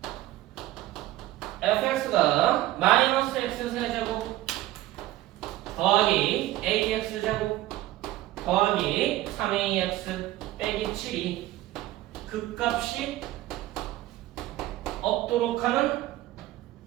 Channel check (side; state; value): left; quieter; 15.6 dB